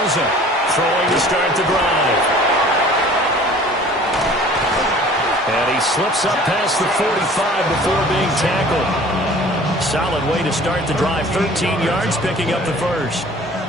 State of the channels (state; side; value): normal; both; correlation 0.48